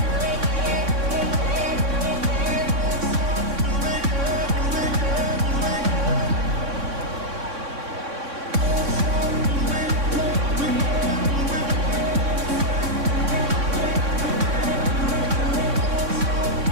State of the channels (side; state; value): left; late; 3.6 ms